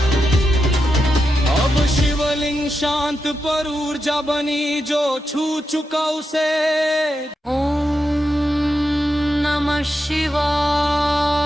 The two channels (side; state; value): both; normal; correlation 0.87